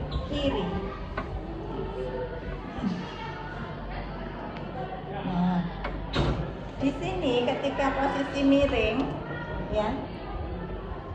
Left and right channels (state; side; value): identical; both; correlation 1.00